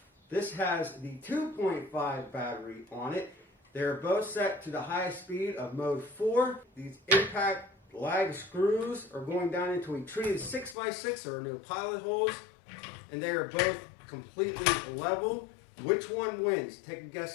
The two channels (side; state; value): right; drops out; at 10.8 s